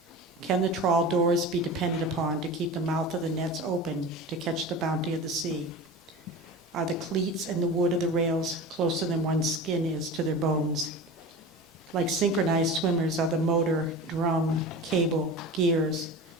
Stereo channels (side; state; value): both; normal; correlation 0.32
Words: Can the trawl doors be depended upon to keep the mouth of the nets open to catch the bounty of the sea? Are the cleats and the wood of the rails closer than one's skin is to their bones? Like synchronized swimmers are the motor, drum, cable, gears,